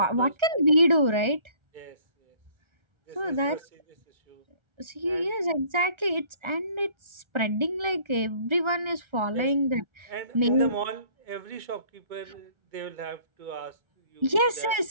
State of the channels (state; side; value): late; left; 1.3 ms